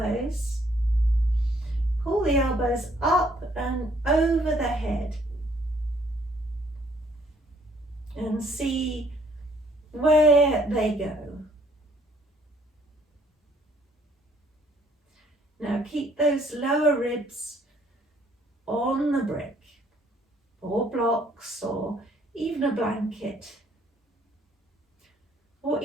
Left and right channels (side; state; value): both; normal; correlation 0.64